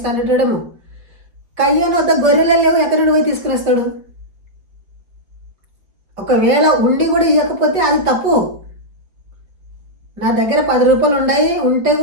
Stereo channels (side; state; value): left; late; 5.0 ms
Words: అనేటోడేమో. కయ్యను వద్ద గొర్రెలు లేవు, ఎక్కడి నుండి పోయి తీసుకుని వస్తాడు? ఒకవేళ ఉండి కూడా ఇవ్వకపోతే అది తప్పు. నా దగ్గర 10 రూపాయలు ఉన్నాయి, ఉంటే